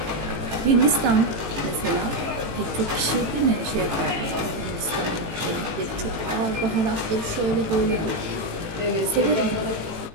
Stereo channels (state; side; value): late; left; 18 ms